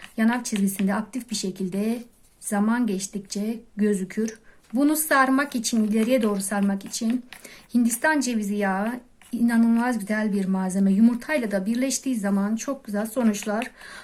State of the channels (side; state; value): both; identical; correlation 1.00